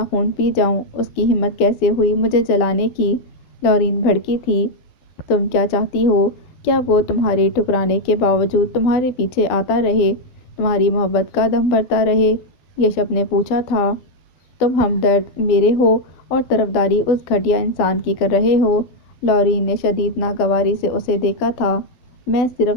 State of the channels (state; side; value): late; right; 12 ms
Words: خون پی جاؤں، اس کی ہمت کیسے ہوئی مجھے جلانے کی؟ لورین بھڑکی تھی۔ تم کیا چاہتی ہو؟ کیا وہ تمہارے ٹھکرانے کے باوجود تمہارے پیچھے آتا رہے، تمہاری محبت کا دم بھرتا رہے؟ یشب نے پوچھا تھا۔ تم ہمدرد میرے ہو اور طرفداری اس گھٹیا انسان کی کر رہے ہو؟ لورین نے شدید ناگواری سے اسے دیکھا تھا۔ میں